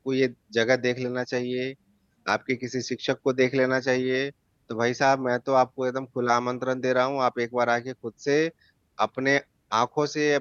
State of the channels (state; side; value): identical; both; correlation 1.00